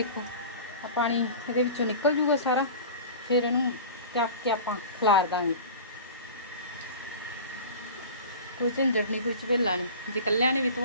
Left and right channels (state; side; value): inverted; both; correlation -0.36